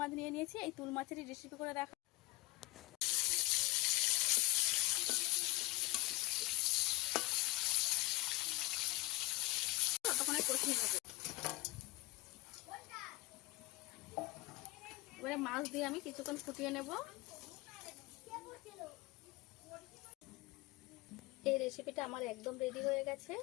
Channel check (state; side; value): quieter; right; 22.9 dB